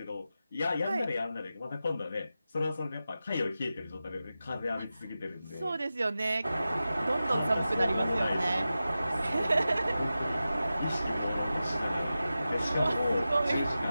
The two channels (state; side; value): inverted; both; correlation -0.93